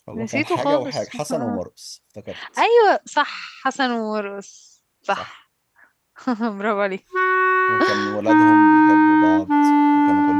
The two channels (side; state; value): both; identical; correlation 1.00